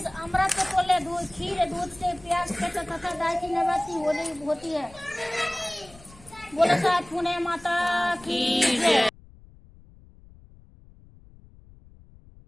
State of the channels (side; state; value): left; noise; rumble, 23 dB below the sound